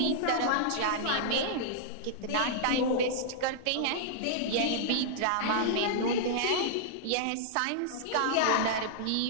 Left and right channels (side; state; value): both; different; correlation -0.01